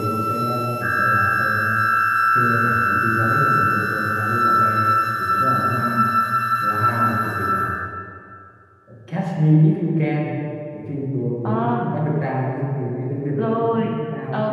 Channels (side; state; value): both; identical; correlation 1.00